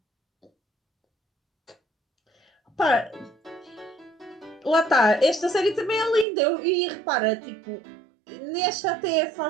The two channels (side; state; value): left; drops out; at 6.2 s